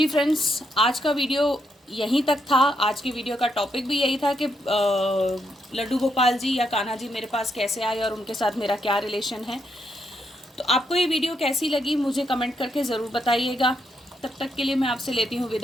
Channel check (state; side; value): normal; both; correlation 0.79